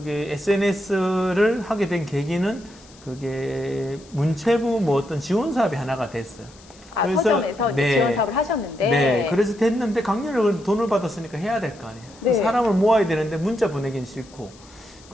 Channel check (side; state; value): left; noise; hiss, 24 dB below the sound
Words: SNS를 하게 된 계기는 그게 문체부 뭐 어떤 지원 사업이 하나가 됐어요. 그래서, 서점에서 이제 지원 사업을 하셨는데. 네, 그래서 됐는데 강연을 돈을 받았으니까 해야 될 거 아니에요. 네. 사람을 모아야 되는데 문자 보내긴 싫고